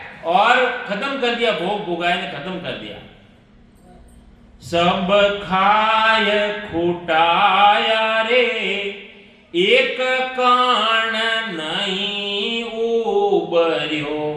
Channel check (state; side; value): identical; both; correlation 1.00